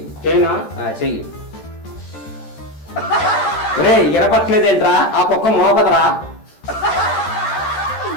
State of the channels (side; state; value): right; late; 14 ms